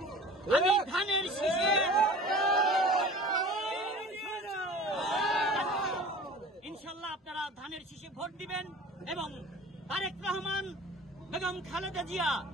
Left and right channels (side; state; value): both; normal; correlation 0.42